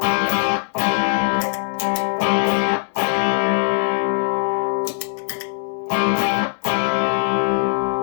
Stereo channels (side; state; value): right; silent; digital silence